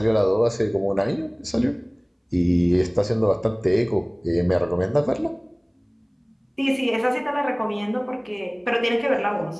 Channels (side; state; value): both; identical; correlation 1.00